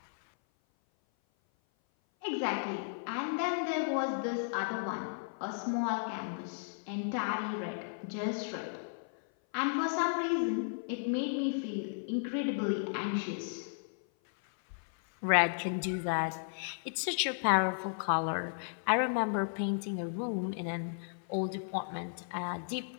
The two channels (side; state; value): right; silent; 55 dB below the other